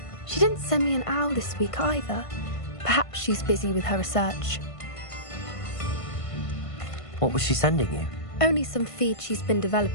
She didn't send me an owl this week either. Perhaps she's busy with her research. What was she sending you? Only some feed she's been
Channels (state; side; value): late; right; 1.5 ms